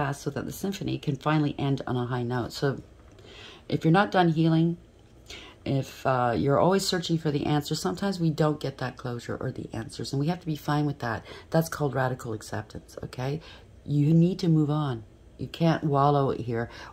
so that the symphony can finally end on a high note. So if you're not done healing, if you're always searching for the answer, sometimes we don't get that closure or the answers, and we have to be fine with that. That's called radical acceptance, okay? You need to move on. You can't wallow here,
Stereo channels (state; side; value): identical; both; correlation 1.00